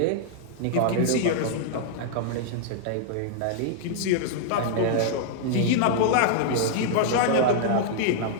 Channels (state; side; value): different; both; correlation -0.01